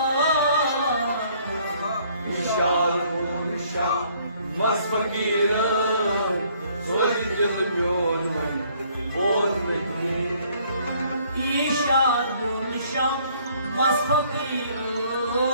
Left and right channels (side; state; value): both; inverted; correlation -0.63